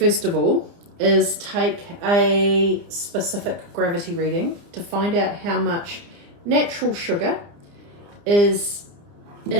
of all is take a specific gravity reading to find out how much natural sugar is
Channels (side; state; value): left; late; 30 ms